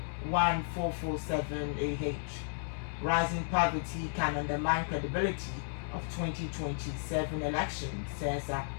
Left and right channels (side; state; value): right; silent; digital silence